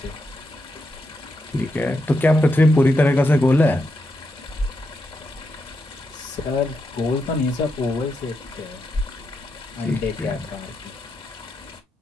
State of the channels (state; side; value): normal; both; correlation 0.84